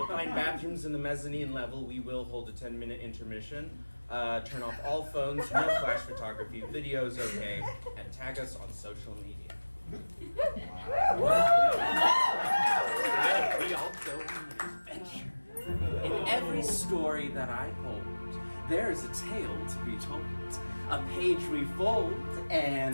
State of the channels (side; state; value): both; inverted; correlation -1.00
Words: find bathrooms in the mezzanine level. We will hold a 10-minute intermission. Turn off all phones, no flash photography, videos okay, and tag us on social media. We all go on an adventure. In every story that I hold, there is a tale to be told. A page we fold,